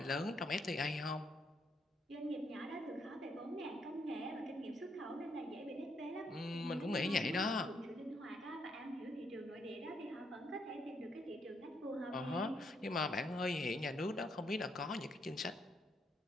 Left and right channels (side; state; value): both; normal; correlation 0.75